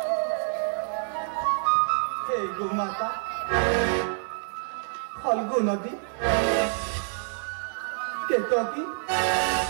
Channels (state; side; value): silent; left; 60 dB below the other